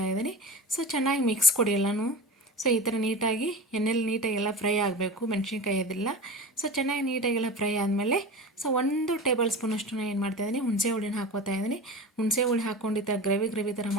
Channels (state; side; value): normal; both; correlation 0.31